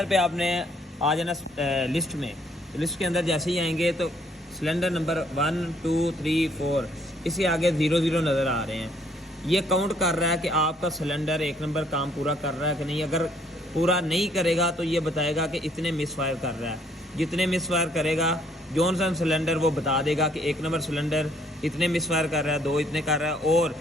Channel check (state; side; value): normal; both; correlation 0.65